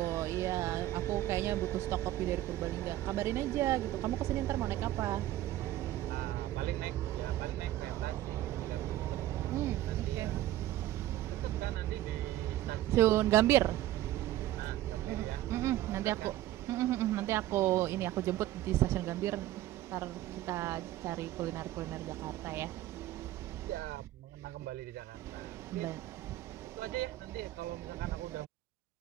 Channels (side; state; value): left; quieter; 14.5 dB